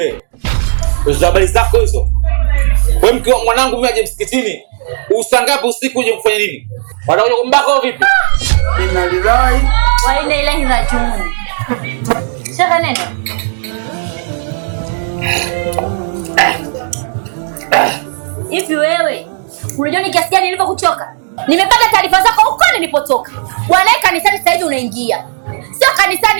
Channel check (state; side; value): silent; left; digital silence